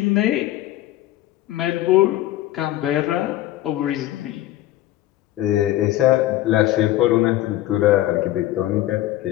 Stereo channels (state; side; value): quieter; right; 14.8 dB